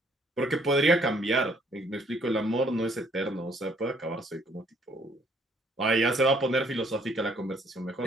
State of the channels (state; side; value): normal; both; correlation 0.64